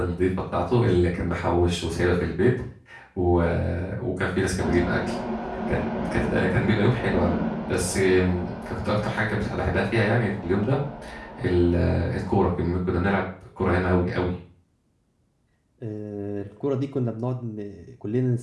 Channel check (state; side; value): identical; both; correlation 1.00